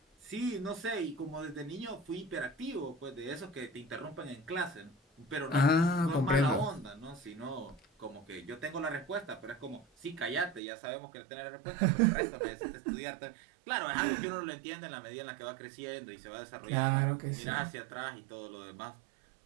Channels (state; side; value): drops out; left; at 10.6 s